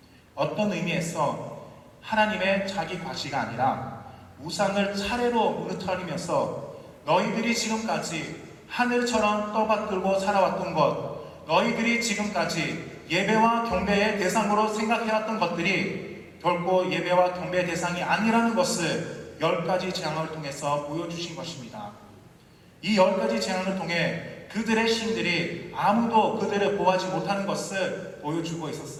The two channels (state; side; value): identical; both; correlation 1.00